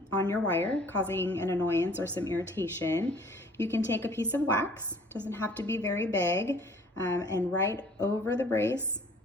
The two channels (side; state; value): both; normal; correlation 0.54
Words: on your wire, causing an annoyance or some irritation, you can take a piece of wax, doesn't have to be very big, and right over the brace,